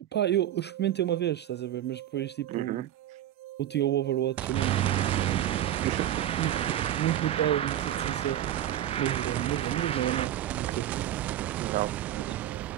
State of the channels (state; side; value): quieter; left; 12.0 dB